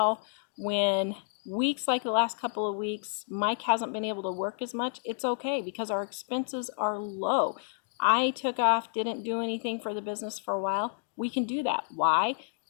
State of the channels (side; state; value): right; silent; digital silence